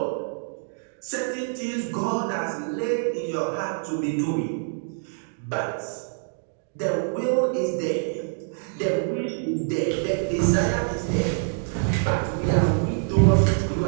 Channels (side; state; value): left; silent; digital silence